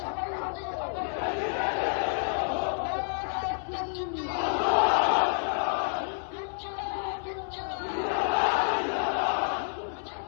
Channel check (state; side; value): silent; right; 58 dB below the other